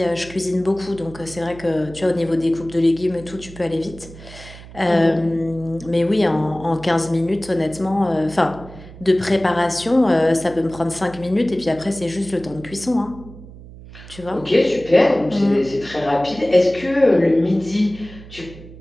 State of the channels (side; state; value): right; noise; hum, 17 dB below the sound